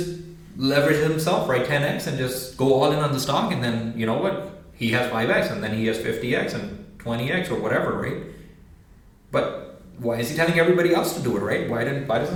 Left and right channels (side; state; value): both; identical; correlation 1.00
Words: leverage himself, right? 10x and just go all in on the stock, and then you know what? He has 5x and then he has 50x and 20x or whatever, right? But why is he telling everybody else to do it, right? Why